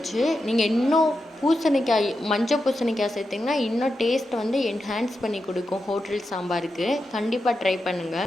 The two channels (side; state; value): both; normal; correlation 0.88